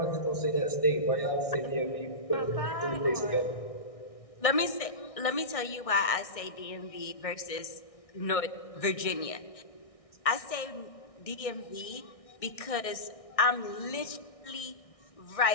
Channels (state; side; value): late; right; 1.6 ms